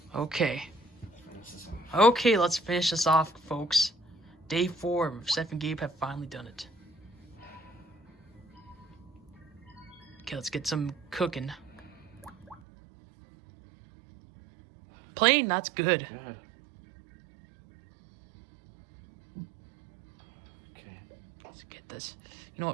Okay. Okay, let's finish this off, folks. Day 4, Seth and Gabe have finally done it. Okay, let's get some cooking. Plain, that's good. Good. Okay. Let's get this. You know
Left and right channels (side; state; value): left; drops out; at 12.6 s